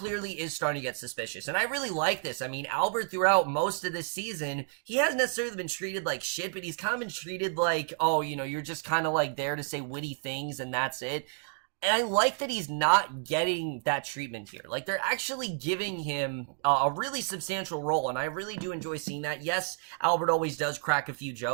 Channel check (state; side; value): silent; left; 57 dB below the other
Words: is starting to get suspicious, and I really like this. I mean, Albert, throughout most of this season, he hasn't necessarily been treated like shit, but he's kind of been treated like, oh, you're just kind of like there to say witty things, and that's it. And I like that he's not getting that treatment here. Like, they're actually giving him a really substantial role, and I really do enjoy seeing that. Yes, Albert always does crack a few